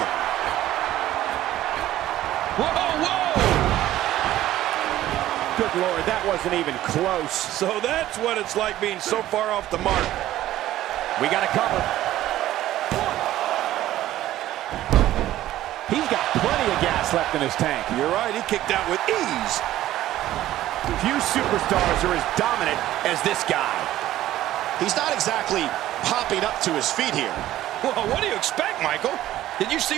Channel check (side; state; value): left; quieter; 14.1 dB